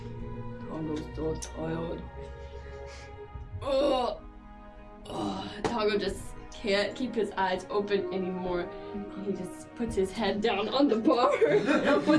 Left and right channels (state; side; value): identical; both; correlation 1.00